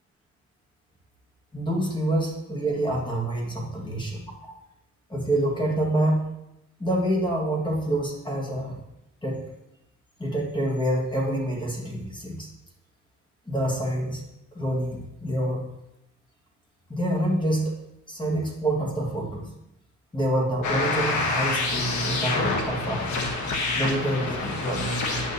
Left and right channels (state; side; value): normal; both; correlation 0.54